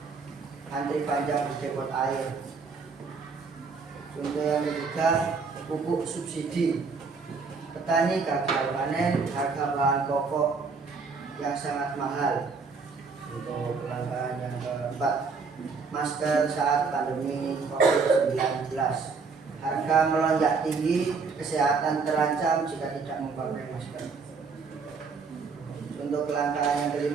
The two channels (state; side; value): quieter; left; 4.8 dB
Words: antri panjang di depot air. Contoh yang ketiga, pupuk subsidi, petani gagal panen, harga bahan pokok yang sangat mahal. Untuk kelangkaan yang keempat, masker saat pandemi COVID-19, harga melonjak tinggi, kesehatan terancam jika tidak memakai masker. Untuk kelangkaan yang